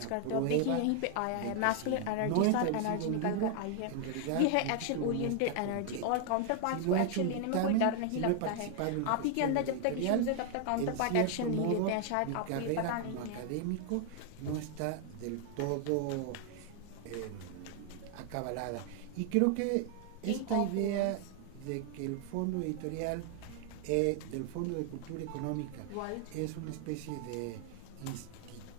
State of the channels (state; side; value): different; both; correlation 0.00